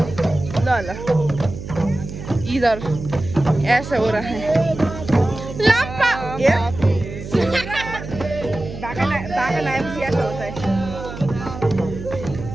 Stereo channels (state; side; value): noise; right; hum, 10 dB below the sound